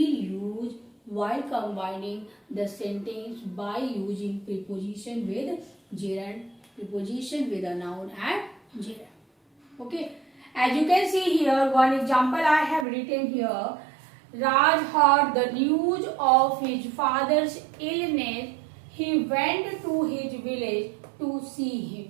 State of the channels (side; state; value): left; drops out; at 12.9 s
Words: use while combining the sentence by using preposition with gerund, preposition with a noun and gerund. Okay. As you can see here, one example I have written here. Raj heard the news of his father's illness. He went to his village to see him.